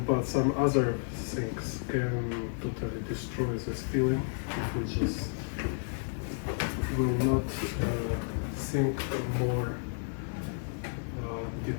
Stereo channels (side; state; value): right; silent; 57 dB below the other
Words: but some other things can totally destroy this feeling if we just will not think more